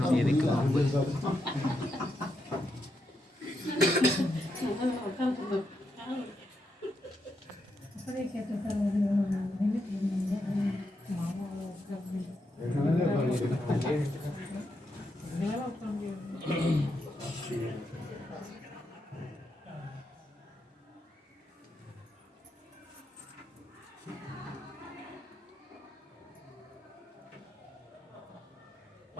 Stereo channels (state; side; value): normal; both; correlation 0.82